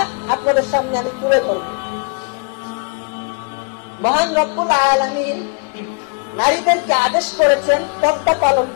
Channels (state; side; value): quieter; right; 35.7 dB